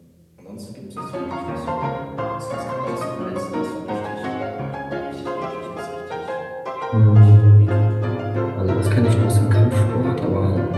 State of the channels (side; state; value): both; identical; correlation 1.00